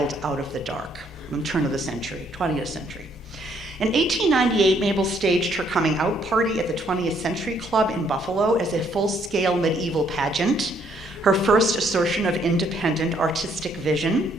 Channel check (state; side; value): normal; both; correlation 0.68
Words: Out of the Dark, from turn of the century, 20th century. In 1898, Mabel staged her coming out party at the 20th Century Club in Buffalo as a full-scale medieval pageant, her first assertion of independent artistic